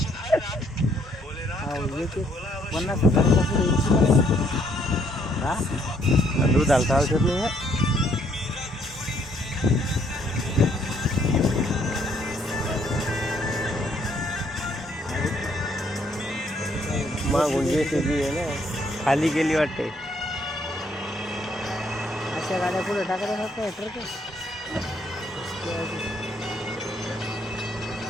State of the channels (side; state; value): both; normal; correlation 0.68